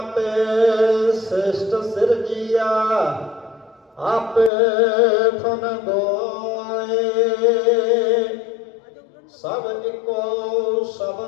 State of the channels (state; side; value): drops out; right; at 4.5 s